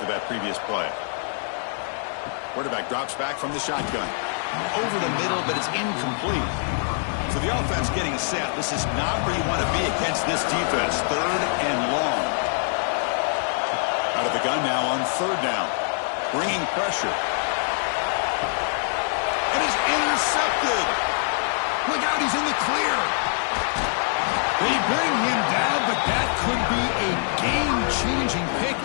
that previous play. Quarterback drops back from the shotgun. Over the middle, but it's incomplete. So the offense getting set. This is not where you want to be against this defense. 3rd and long. Out of the gun now on 3rd down. Bringing pressure. It is intercepted. Look out, he's in the clear. They bring him down, but that could be a game-changing pick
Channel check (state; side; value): silent; right; 60 dB below the other